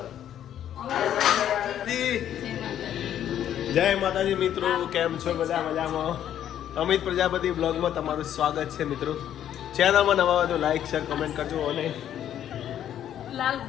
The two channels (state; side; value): quieter; right; 10.6 dB